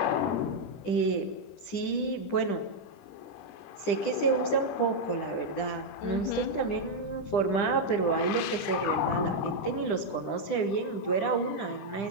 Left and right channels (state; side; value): late; right; 10 ms